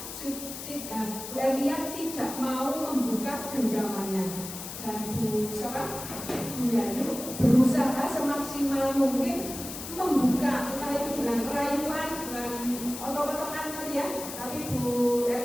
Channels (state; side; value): noise; left; hiss, 9 dB below the sound